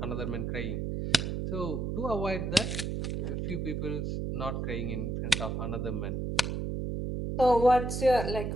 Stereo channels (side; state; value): right; noise; hum, 2 dB below the sound